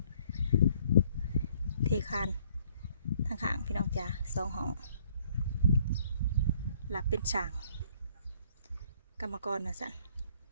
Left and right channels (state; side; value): inverted; both; correlation -0.62